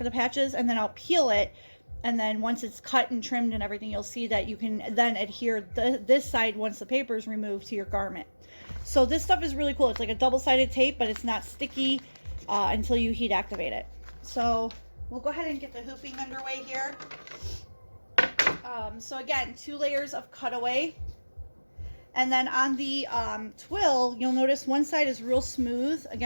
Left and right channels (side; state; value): both; inverted; correlation -1.00